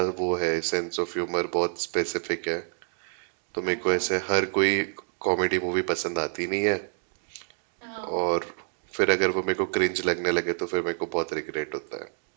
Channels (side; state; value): left; silent; 60 dB below the other